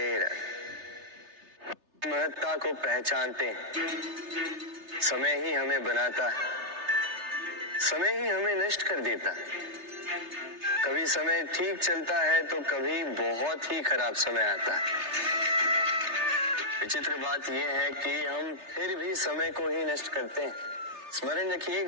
राधे। महत्ता को पहचानते हैं, समय ही हमें बनाता है, समय ही हमें नष्ट कर देता है। कभी समय ठीक चलता है तो कभी बहुत ही खराब समय आता है। विचित्र बात यह है कि हम फिर भी समय को ही नष्ट करते हैं। स्मरण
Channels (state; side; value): late; left; 3.3 ms